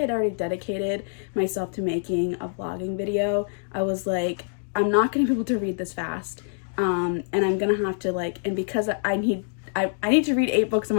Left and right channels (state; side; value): silent; right; digital silence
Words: already dedicated myself to making a vlogging video, I was like, I'm not going to be able to read this fast. and I'm gonna have to like, and because I need to read 8 books a